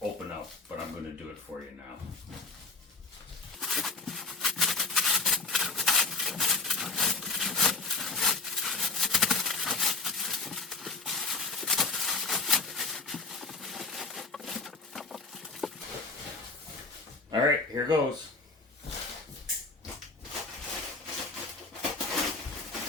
up, but I'm going to do it for you now. All right, here goes.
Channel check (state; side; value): quieter; right; 3.7 dB